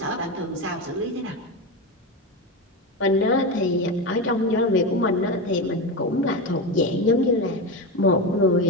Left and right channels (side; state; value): both; normal; correlation 0.18